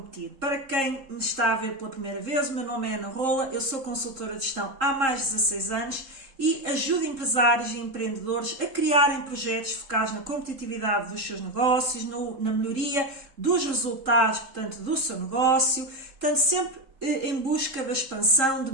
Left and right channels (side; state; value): left; late; 3.7 ms